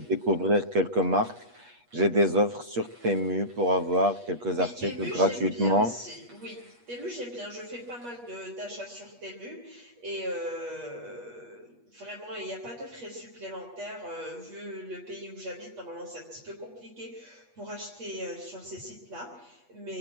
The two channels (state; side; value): late; left; 8.3 ms